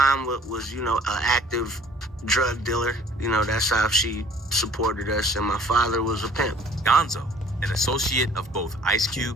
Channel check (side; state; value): both; normal; correlation 0.54